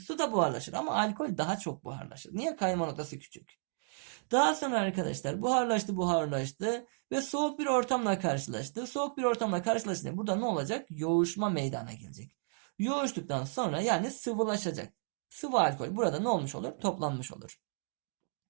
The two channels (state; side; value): silent; left; digital silence